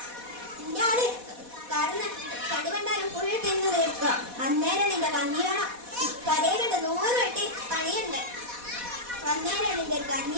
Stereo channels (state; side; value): late; left; 4.1 ms